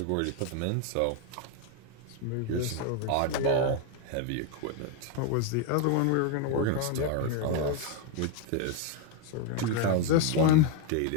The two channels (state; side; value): different; both; correlation 0.02